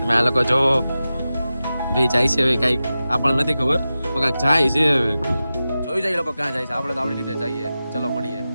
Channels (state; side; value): inverted; both; correlation -0.94